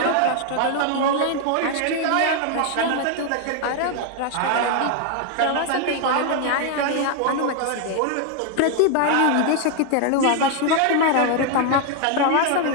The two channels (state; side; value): different; both; correlation 0.01